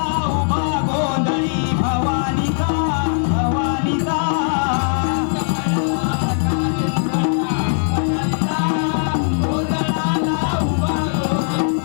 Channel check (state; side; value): silent; right; 61 dB below the other